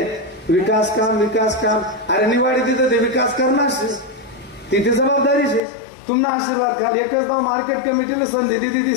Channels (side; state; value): right; drops out; at 5.6 s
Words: विकास काम अरे निवाडी तिथं ते विकास करणार, तिथे जबाबदारी आहे। तुमना आशीर्वाद घाल, एकच गाव मार्केट कमिटीने संधी दिली, ती